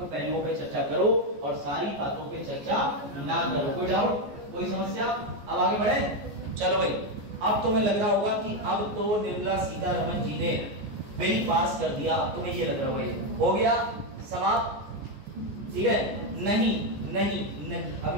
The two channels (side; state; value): left; late; 14 ms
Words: पहलुओं पे चर्चा करो और सारी बातों पे चर्चा ना करो। कोई डाउट, कोई समस्या? अब आगे बढ़े, चलो भाई। अब तुम्हें लग रहा होगा कि अब तो निर्मला सीतारमण जी ने बिल पास कर दिया, अब तुम्हें ये लग रहा होगा हो गया समाप्त, ठीक है? नहीं नहीं नहीं,